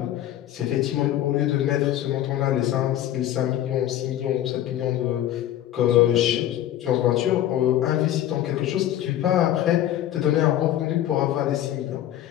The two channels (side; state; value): right; quieter; 12.4 dB